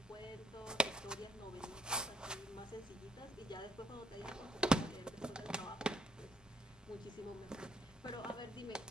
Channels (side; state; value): both; normal; correlation 0.70